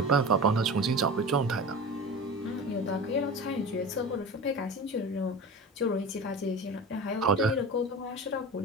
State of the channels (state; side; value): normal; both; correlation 0.32